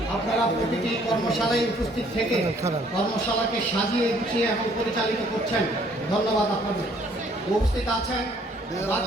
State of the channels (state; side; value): normal; both; correlation 0.62